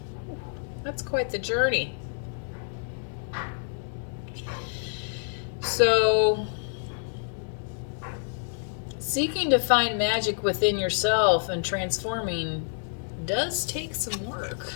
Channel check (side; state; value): right; silent; digital silence